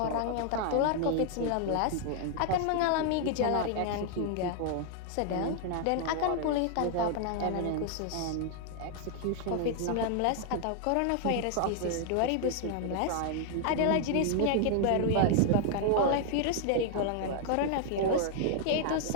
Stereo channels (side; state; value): both; different; correlation 0.00